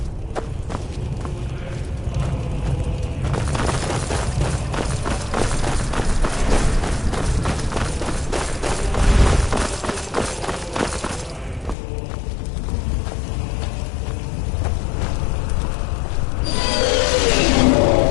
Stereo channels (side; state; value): right; drops out; at 11.8 s